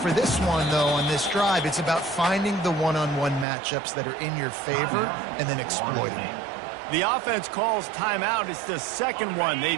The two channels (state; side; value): drops out; left; at 3.5 s